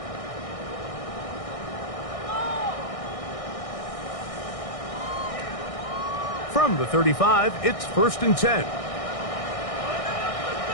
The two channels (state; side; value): late; right; 1.6 ms